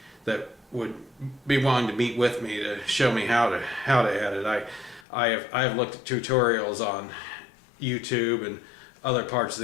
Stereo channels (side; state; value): right; drops out; at 5.1 s